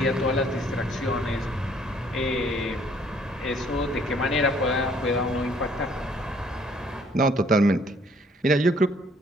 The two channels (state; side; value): normal; both; correlation 0.62